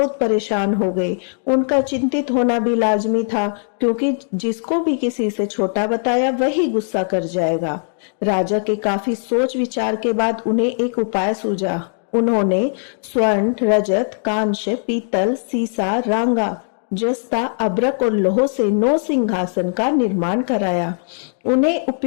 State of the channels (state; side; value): silent; right; digital silence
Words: परेशान हो गए। उनका चिंतित होना भी लाजमी था, क्योंकि जिसको भी किसी से छोटा बताया वही गुस्सा कर जाएगा। राजा के काफी सोच विचार के बाद उन्हें एक उपाय सूझा। उन्होंने स्वर्ण, रजत, कांच, पीतल, सीसा, रांगा, जस्ता, अभ्रक और लोह से 9 सिंहासन का निर्माण कराया। उन्हें